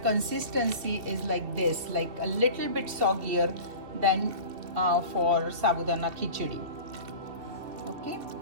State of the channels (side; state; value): left; late; 2.7 ms